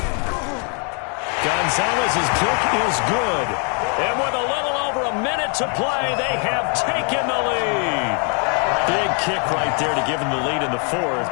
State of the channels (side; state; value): right; quieter; 39.2 dB